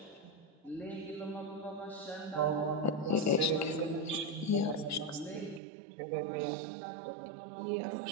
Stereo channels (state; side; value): drops out; left; at 5.6 s